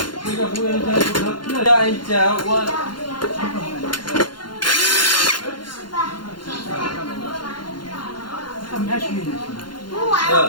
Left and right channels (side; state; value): right; late; 0.71 ms